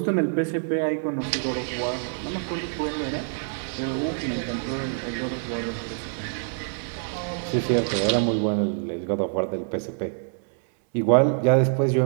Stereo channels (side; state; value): left; silent; digital silence